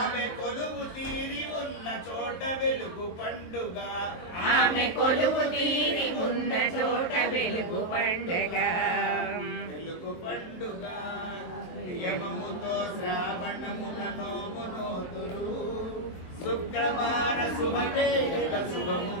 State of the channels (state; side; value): late; right; 23 ms